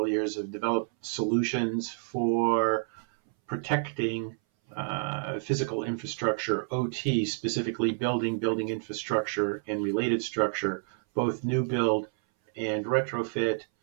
years have developed solutions for protecting physical infrastructure, OT, specifically building infrastructure and related structure, both new build and retrofit.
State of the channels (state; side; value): silent; left; 59 dB below the other